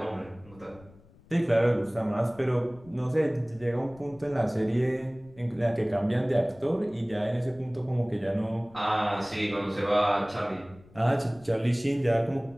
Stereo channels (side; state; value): left; noise; rumble, 24 dB below the sound